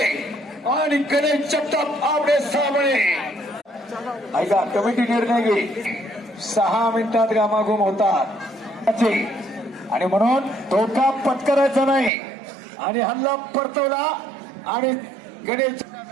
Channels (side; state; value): left; drops out; at 12.1 s